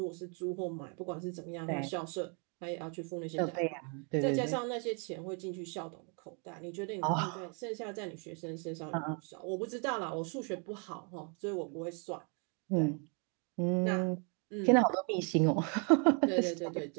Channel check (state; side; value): quieter; left; 37.3 dB